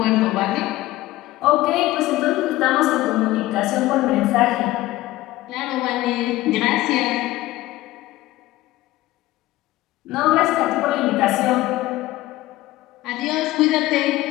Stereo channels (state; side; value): quieter; right; 17.1 dB